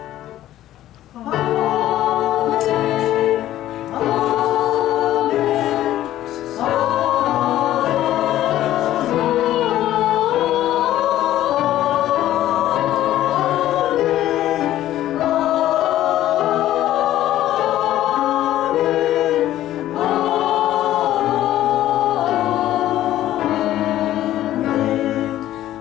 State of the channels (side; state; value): right; quieter; 13.5 dB